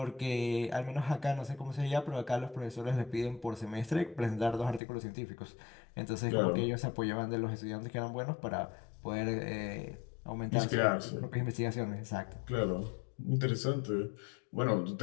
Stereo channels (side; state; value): right; drops out; at 4.8 s